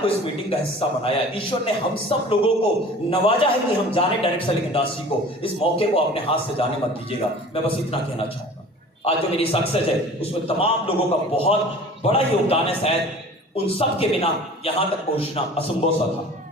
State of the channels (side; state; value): both; normal; correlation 0.43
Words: इस मीटिंग का हिस्सा बनाया है। ईश्वर ने हम सब लोगों को नवाजा है कि हम जाने डायरेक्ट सेलिंग इंडस्ट्री को। इस मौके को अपने हाथ से जाने मत दीजिएगा। मैं बस इतना कहना चाहूंगा, आज जो मेरी सक्सेस है उसमें तमाम लोगों का बहुत बड़ा योगदान है। शायद उन सब के बिना यहां तक पहुंचना असंभव सा था।